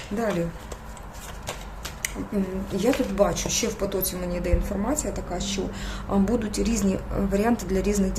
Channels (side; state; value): both; identical; correlation 1.00